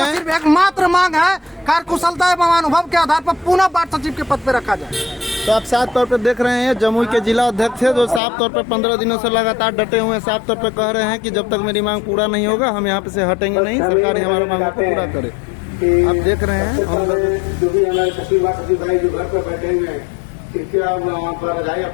हैं सिर्फ एकमात्र मांग है कार्यकुशलता एवं अनुभव के आधार पर पुनः वार्ड सचिव के पद पर रखा जाए। तो आप साफ तौर पे देख रहे हैं जमुई के जिला अध्यक्ष है जो साफ तौर पे 15 दिनों से लगातार डटे हुए हैं, साफ तौर पे कह रहे हैं कि जब तक मेरी मांग पूरा नहीं होगा हम यहाँ पे से हटेंगे नहीं, सरकार ही हमारी मांगों को पूरा करे। आप देख रहे हैं हम लोग जो भी हमारे सचिव भाई जो घर पर बैठे हुए हैं, कृपया वहाँ पर रजाई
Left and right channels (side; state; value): right; drops out; at 8.2 s